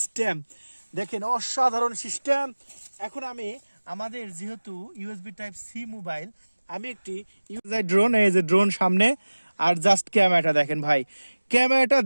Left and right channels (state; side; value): inverted; both; correlation -1.00